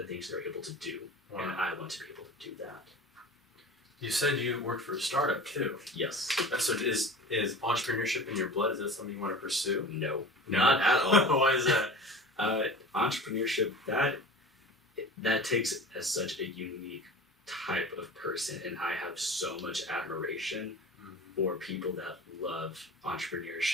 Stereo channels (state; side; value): normal; both; correlation 0.37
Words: things they're able to do. Wow. And I want to be able to do that. You said you worked for a startup too. Yes. So is entrepreneurship in your blood? Is that something you want to pursue? No, not at all. Why is that? Entrepreneurship, that takes such a unique type of person, and I have so much admiration for people that love